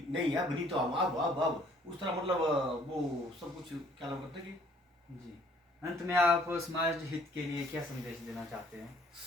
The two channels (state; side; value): normal; both; correlation 0.59